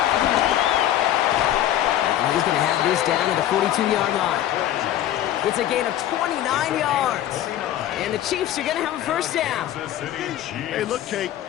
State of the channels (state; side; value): quieter; right; 12.3 dB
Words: And he's going to have this down at the 42-yard line. It's a gain of 29 yards. And the Chiefs are going to have a first down. Hey, look, Kate,